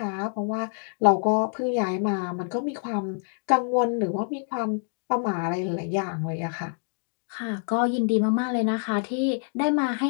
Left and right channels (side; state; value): right; silent; 58 dB below the other